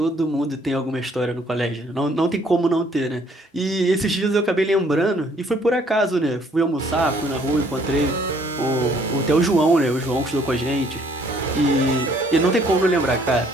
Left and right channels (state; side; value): normal; both; correlation 0.63